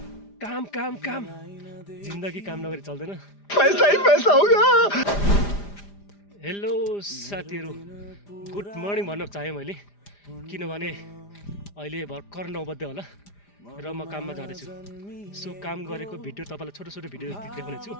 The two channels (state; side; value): late; right; 5.0 ms